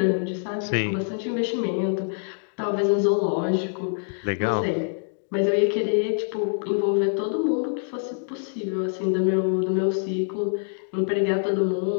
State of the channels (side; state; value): right; silent; digital silence